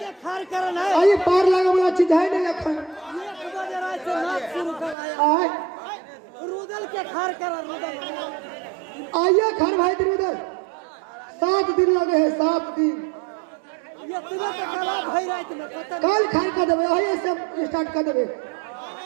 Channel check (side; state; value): left; drops out; at 5.0 s